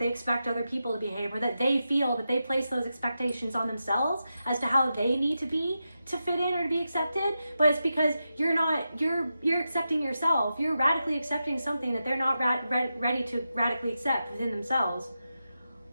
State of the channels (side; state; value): both; inverted; correlation -0.89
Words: expect other people to behave, or that they feel that they place those expectations on themselves as to how they need to be to fit in or to be accepted. But it's because you're accepting yourself. You're radically accepting something that they're not ready to radically accept within themselves.